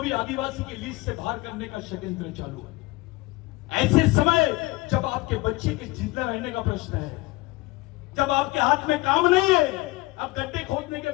आदिवासी की लिस्ट से बाहर करने का षड्यंत्र चालू है। ऐसे समय जब आपके बच्चे के जिंदा रहने का प्रश्न है, जब आपके हाथ में काम नहीं है, अब गड्ढे खोदने के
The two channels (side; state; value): right; quieter; 21.5 dB